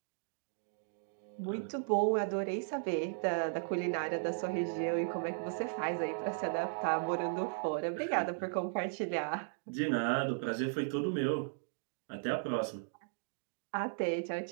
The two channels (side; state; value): left; silent; digital silence